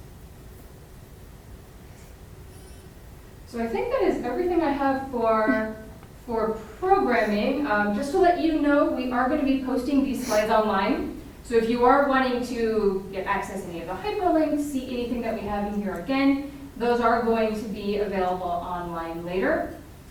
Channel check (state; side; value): identical; both; correlation 1.00